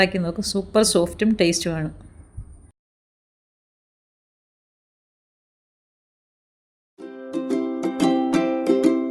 നോക്കും. സൂപ്പർ സോഫ്റ്റും ടേസ്റ്റുമാണ്.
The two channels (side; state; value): both; identical; correlation 1.00